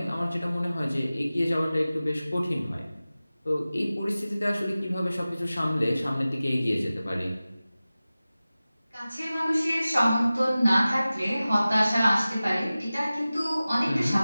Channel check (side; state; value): both; inverted; correlation -0.97